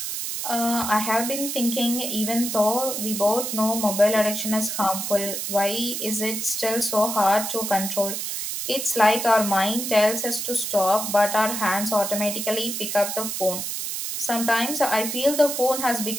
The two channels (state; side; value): noise; right; hiss, 4 dB below the sound